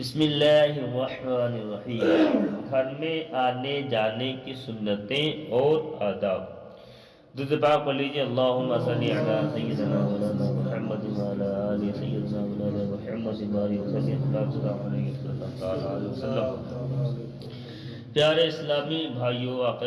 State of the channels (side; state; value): both; identical; correlation 1.00